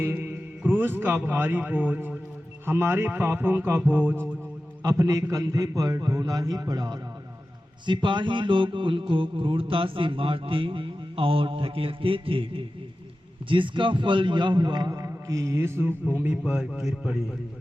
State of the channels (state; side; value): normal; both; correlation 0.94